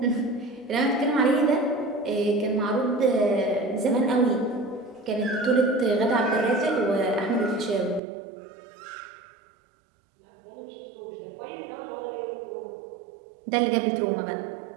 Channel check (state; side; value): drops out; left; at 8.0 s